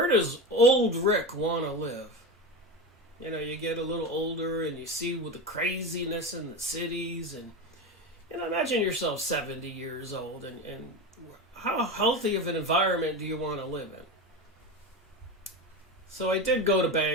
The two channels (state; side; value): normal; both; correlation 0.22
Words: does old Rick want to live? You get a little older and you see with the craziness in the cities. And imagine yourself 70 years old. And how healthy of an environment do you want to live in? So I did go to